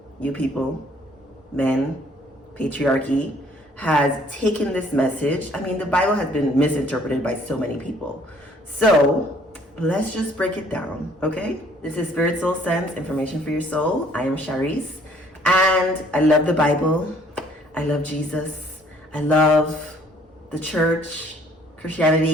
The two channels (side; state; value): both; normal; correlation 0.60